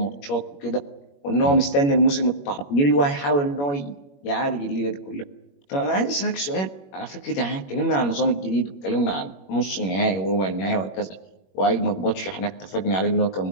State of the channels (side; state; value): right; late; 21 ms